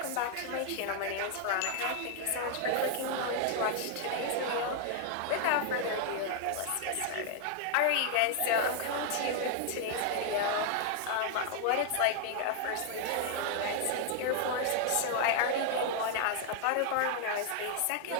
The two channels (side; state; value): both; different; correlation 0.00